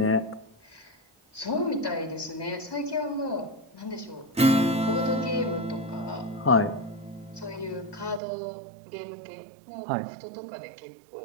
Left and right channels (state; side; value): drops out; left; at 8.2 s